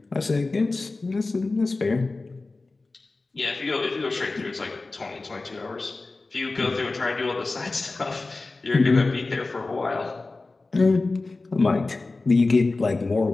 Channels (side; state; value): right; quieter; 3.5 dB